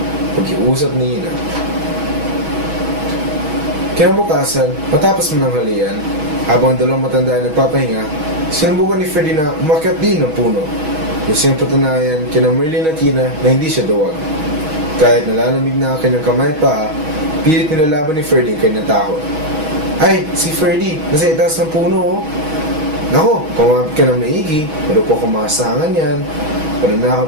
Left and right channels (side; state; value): left; late; 6.3 ms